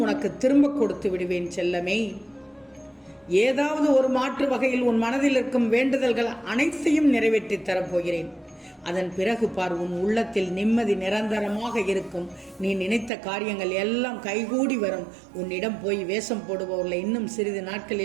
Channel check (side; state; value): left; drops out; at 13.1 s